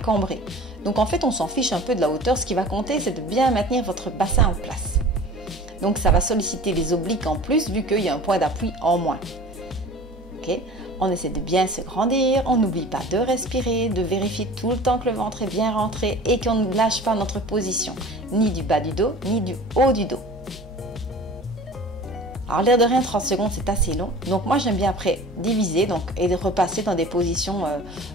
Donc en fait, on s'en fiche un peu de la hauteur. Ce qui va compter, c'est de bien maintenir votre bassin en place. Donc ça va solliciter les obliques en plus vu qu'il y a un point d'appui en moins. Ok, on essaie de bien se grandir, on n'oublie pas de respirer, de vérifier tout le temps que le ventre est bien rentré et qu'on ne lâche pas notre position, ni du bas du dos, ni du haut du dos. Alors l'air de rien, 30 secondes c'est assez long, donc moi j'aime bien après diviser et de repasser dans des positions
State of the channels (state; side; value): normal; both; correlation 0.42